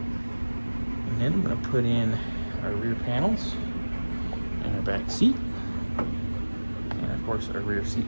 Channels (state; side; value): inverted; both; correlation -1.00